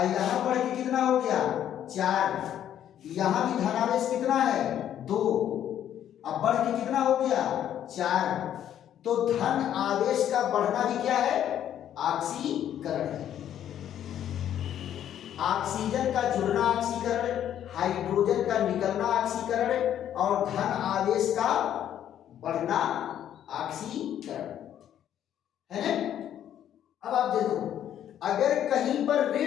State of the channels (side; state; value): right; quieter; 10.5 dB